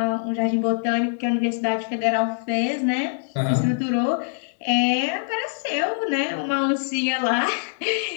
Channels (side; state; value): right; silent; 59 dB below the other